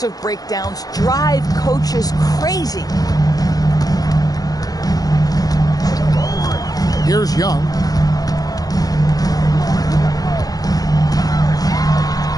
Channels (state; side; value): late; right; 0.18 ms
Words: breakdowns drive coaches crazy. Here's Young.